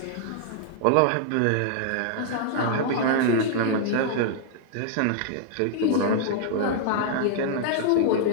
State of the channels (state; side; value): different; both; correlation -0.01